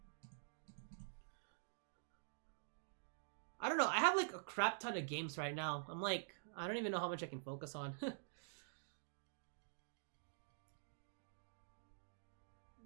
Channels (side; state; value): left; silent; digital silence